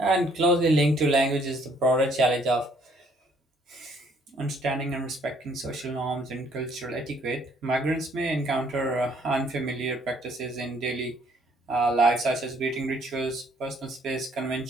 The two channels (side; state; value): both; normal; correlation 0.63